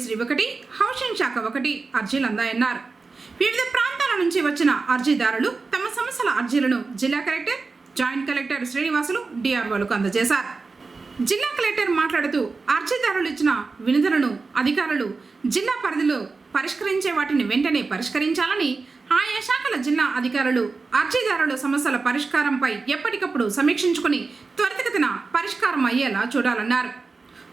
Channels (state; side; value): quieter; left; 4.2 dB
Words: 1, హౌసింగ్ శాఖ 1 అర్జీలు అందాయన్నారు. వివిధ ప్రాంతాల నుంచి వచ్చిన అర్జీదారులు తమ సమస్యల అర్జీలను జిల్లా కలెక్టర్, జాయింట్ కలెక్టర్ శ్రీనివాసులు, డిఆర్ఓలకు అందజేశారు. జిల్లా కలెక్టర్ మాట్లాడుతూ అర్జీదారులు ఇచ్చిన వినతులను అధికారులు జిల్లా పరిధిలో పరిష్కరించే వాటిని వెంటనే పరిష్కరించాలని, ఆయా శాఖల జిల్లా అధికారులు అర్జీదారుల సమస్యల పరిష్కారంపై ఎప్పటికప్పుడు సమీక్షించుకుని త్వరితగతిన పరిష్కారం అయ్యేలా చూడాలన్నారు.